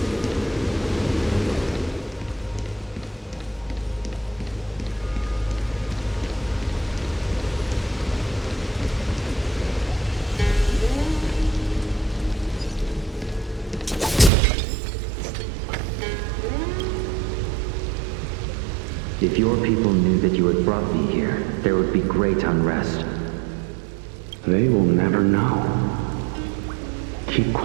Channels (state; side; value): drops out; left; at 14.3 s